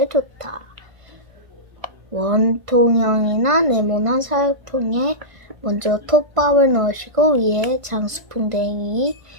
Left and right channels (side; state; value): left; late; 1.5 ms